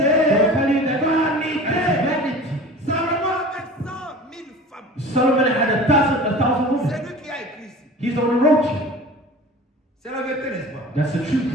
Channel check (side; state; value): both; normal; correlation 0.39